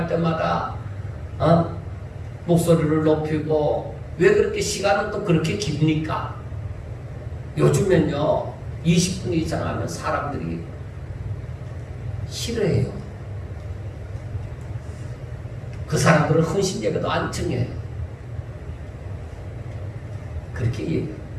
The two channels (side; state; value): both; identical; correlation 1.00